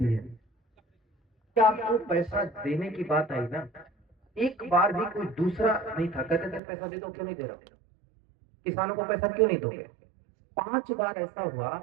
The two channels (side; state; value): left; drops out; at 6.6 s